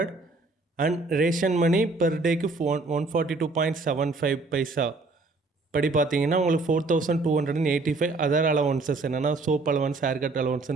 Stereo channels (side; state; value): left; quieter; 3.5 dB